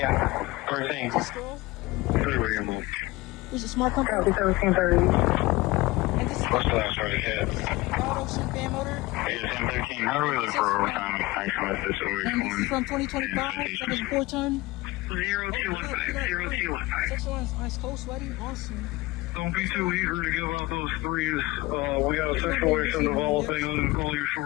we're saying. pistol. There's a smart compass. And this is What's the last word it hit? ROTARY fan motor. It's M13. How do we look for overtime? I come with this over. And this is from 2025. That is 4-ton. 0215. 0215. Section 1 is ice cold, sweaty, awesome. Don't be too eager to give out those threes. We got a situation developing. I'm gonna call you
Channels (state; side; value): quieter; right; 20.6 dB